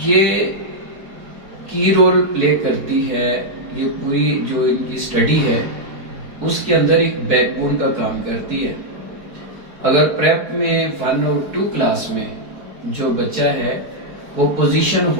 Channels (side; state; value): left; late; 4.6 ms